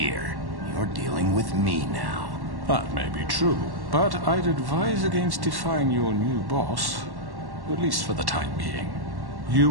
You're dealing with me now. That may be true, but I'd advise against defying your new boss, at least for the time being. You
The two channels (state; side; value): late; left; 1.1 ms